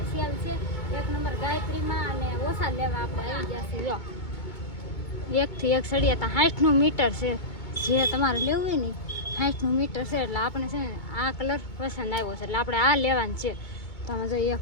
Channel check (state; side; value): late; right; 2.2 ms